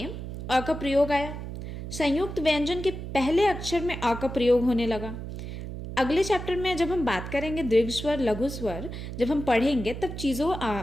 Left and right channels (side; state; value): right; noise; hum, 8 dB below the sound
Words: अ का प्रयोग आया। संयुक्त व्यंजन के पहले अक्षर में अ का प्रयोग होने लगा। अगले चैप्टर में जब हम बात करेंगे दीर्घ स्वर, लघु स्वर, जब हम पढ़ेंगे तब